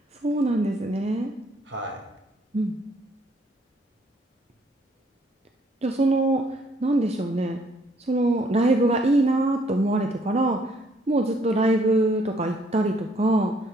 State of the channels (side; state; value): both; normal; correlation 0.66